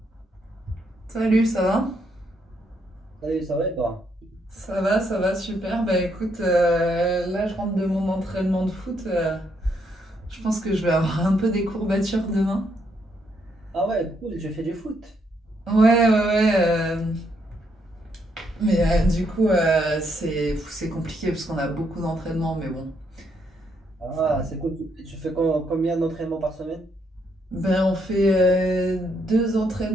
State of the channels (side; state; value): both; normal; correlation 0.75